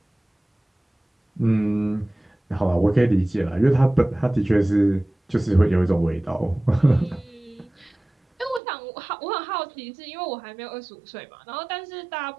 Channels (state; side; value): drops out; left; at 8.6 s